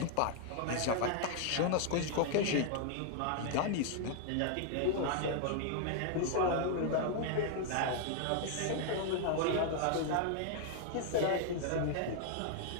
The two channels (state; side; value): different; both; correlation 0.00